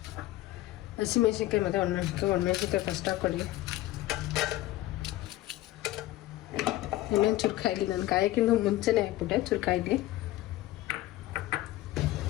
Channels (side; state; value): right; quieter; 16.1 dB